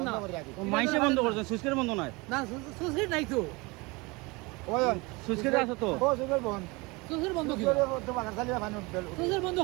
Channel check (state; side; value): quieter; left; 25.4 dB